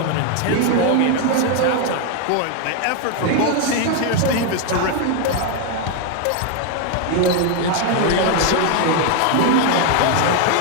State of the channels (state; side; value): different; both; correlation 0.01